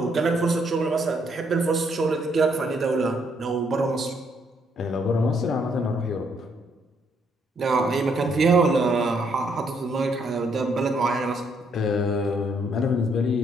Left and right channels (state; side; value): normal; both; correlation 0.72